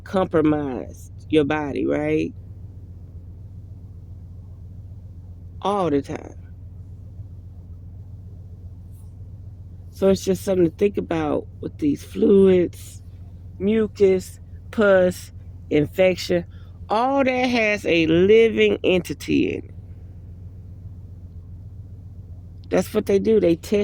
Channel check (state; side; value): identical; both; correlation 1.00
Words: your body, right? All the time. So it's just something to think about with these fluids, mucus, pus, infection. All that has a living entity in it. That's what they do. They